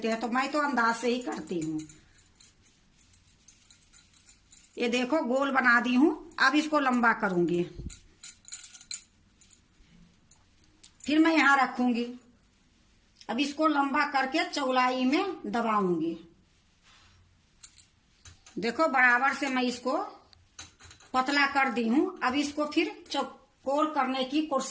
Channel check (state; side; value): identical; both; correlation 1.00